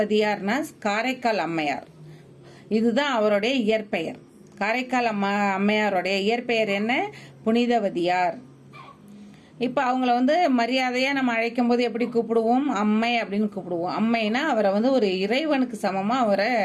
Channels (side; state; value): both; identical; correlation 1.00